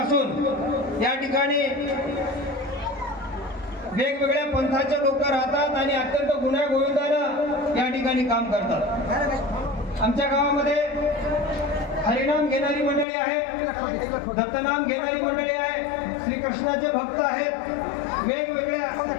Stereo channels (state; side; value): drops out; right; at 13.1 s